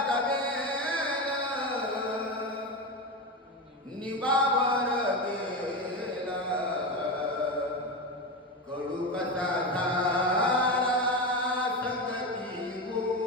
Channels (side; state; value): both; normal; correlation 0.18